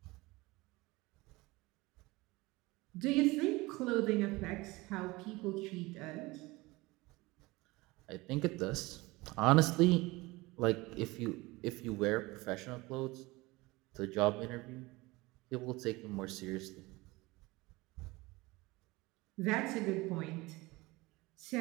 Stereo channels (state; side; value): quieter; left; 21.9 dB